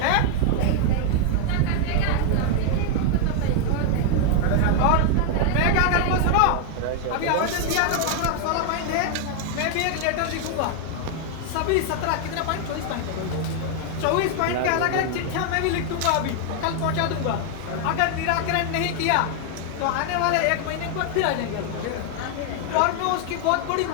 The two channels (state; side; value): different; both; correlation 0.00